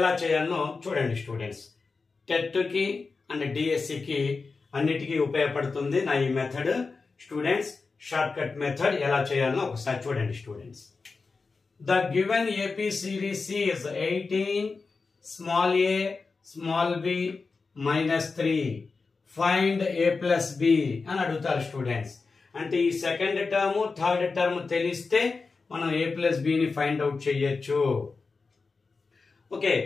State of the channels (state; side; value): quieter; right; 4.3 dB